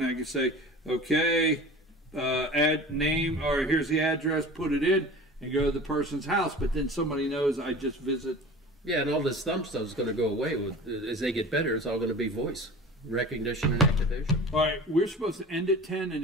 and I can say, okay, add name, or here's the address, put it in, and go to the person's house, but then somebody knows I just visit. Yeah, and all this thumb stuff is going to go away. As they get better, it's all going to be voice recognition and activation. All right, we're supposed to end at 10, and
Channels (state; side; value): normal; both; correlation 0.38